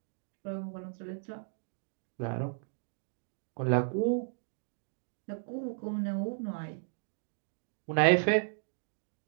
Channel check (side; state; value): left; silent; digital silence